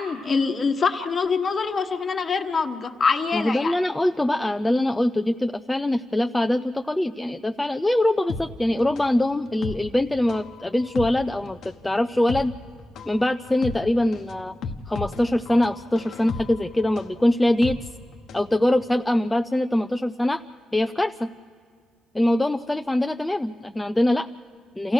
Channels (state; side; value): normal; both; correlation 0.95